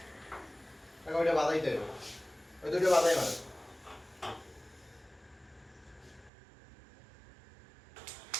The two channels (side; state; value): left; drops out; at 6.3 s